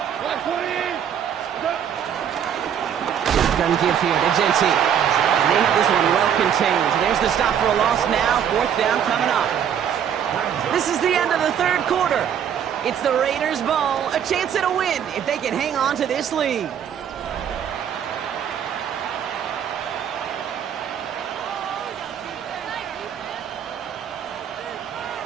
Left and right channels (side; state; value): left; quieter; 8.8 dB